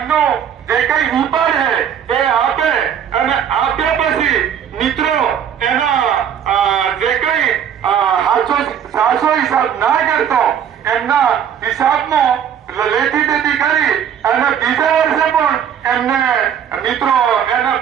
જે કઈ વિપાર છે એ આપે અને આપ્યા પછી મિત્રો એના જે કઈ સાચો હિસાબ ના કરતો એમના હિસાબમાં લેતી દેતી કરી અને બીજા વર્ષે પણ એમને મિત્રો એના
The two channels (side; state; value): left; quieter; 8.8 dB